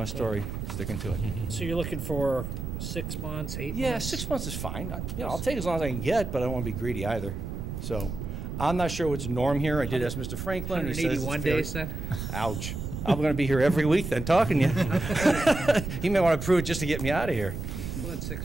story, sticking to it. So you're looking for 6 months, 8 Yeah, months? 6 months is fine. I'll take as long as I can get, but I don't want to be greedy either. So, I'm not sure what's the norm here. I did ask Mr. Franklin, and he says it's 181 fair. days then? Ouch. I'm going to be here every week then, talking to you. He may want to prove it just to get me out of here. Well, that's 6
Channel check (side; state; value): right; noise; rumble, 6 dB below the sound